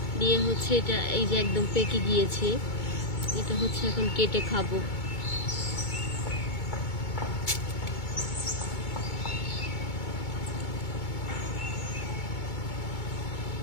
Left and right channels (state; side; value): late; right; 2.2 ms